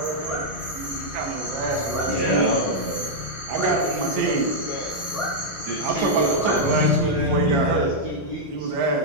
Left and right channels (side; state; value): both; normal; correlation -0.05